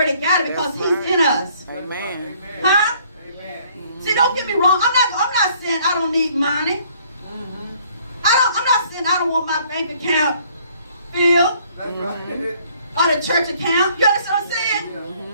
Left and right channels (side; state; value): both; inverted; correlation -0.61